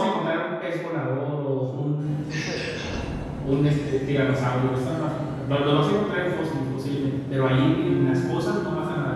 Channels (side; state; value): both; identical; correlation 1.00